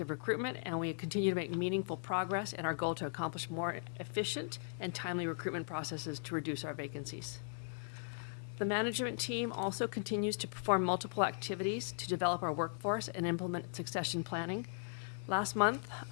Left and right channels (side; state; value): right; silent; digital silence